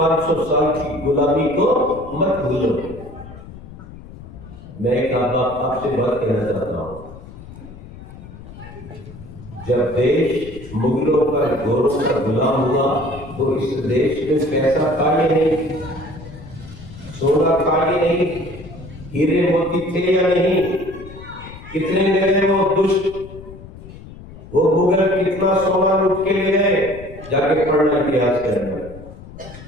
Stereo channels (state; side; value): noise; left; rumble, 16 dB below the sound